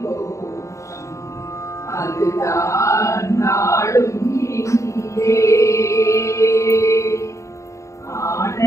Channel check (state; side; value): late; right; 0.15 ms